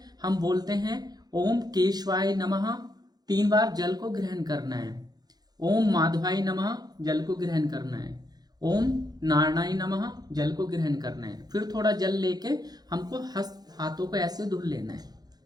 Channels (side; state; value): left; late; 0.19 ms